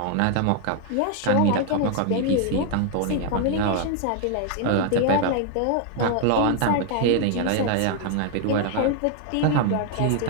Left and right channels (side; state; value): both; different; correlation 0.00